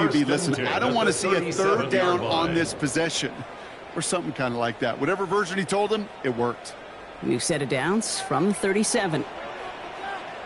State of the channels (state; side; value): identical; both; correlation 1.00